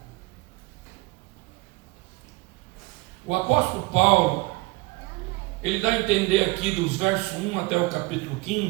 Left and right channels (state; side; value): quieter; left; 23.4 dB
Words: O apóstolo Paulo, ele dá a entender aqui dos versos 1 até o capítulo